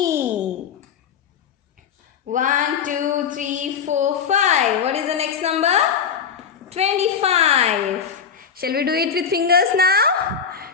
1, 2, 3, 4, 5. What is the next number? 25. Shall we do it with fingers now?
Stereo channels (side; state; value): right; quieter; 7.0 dB